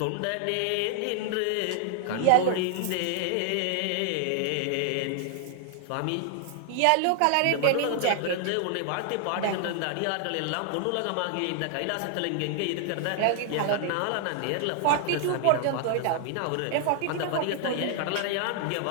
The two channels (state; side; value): different; both; correlation 0.00